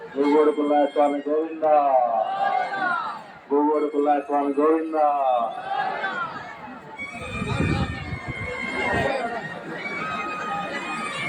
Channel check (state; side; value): identical; both; correlation 1.00